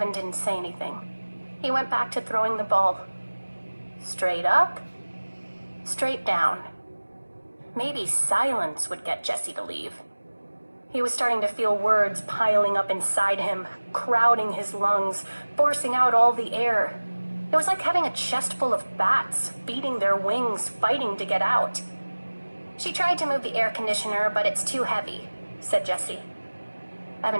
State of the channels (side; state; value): both; inverted; correlation -1.00